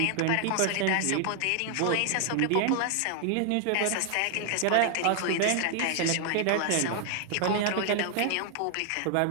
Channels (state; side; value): different; both; correlation 0.00